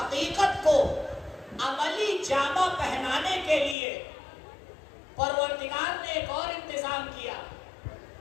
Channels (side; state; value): right; drops out; at 3.8 s